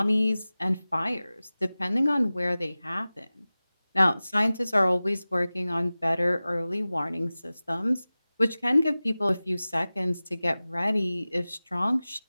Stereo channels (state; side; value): inverted; both; correlation -0.97